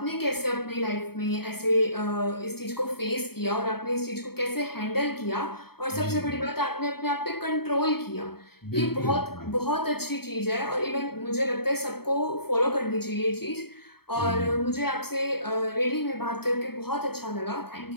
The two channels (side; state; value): right; late; 0.95 ms